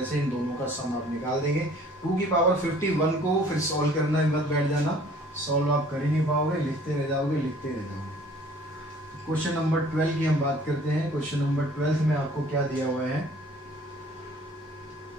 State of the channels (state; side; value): normal; both; correlation 0.54